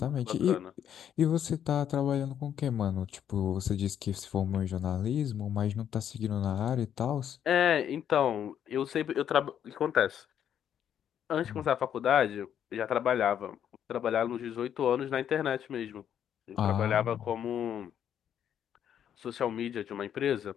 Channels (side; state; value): right; quieter; 9.4 dB